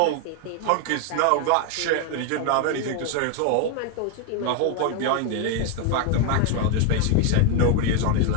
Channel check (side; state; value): both; different; correlation 0.01